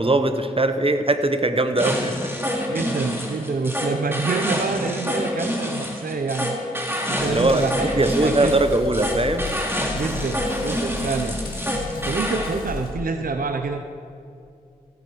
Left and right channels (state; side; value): normal; both; correlation 0.61